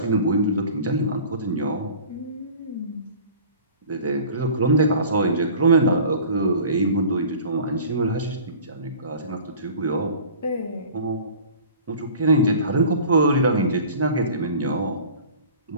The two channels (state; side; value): inverted; both; correlation -0.43